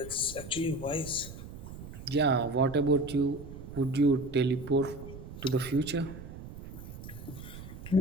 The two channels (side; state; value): right; noise; rumble, 12 dB below the sound